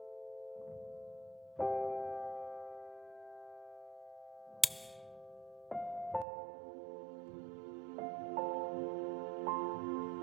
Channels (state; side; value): drops out; left; at 6.2 s